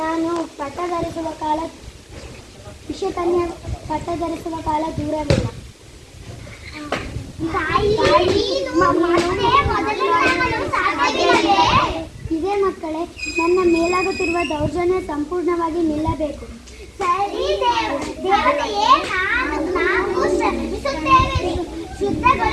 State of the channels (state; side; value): identical; both; correlation 1.00